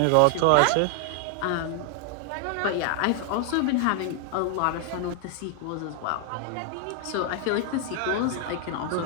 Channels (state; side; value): different; both; correlation 0.00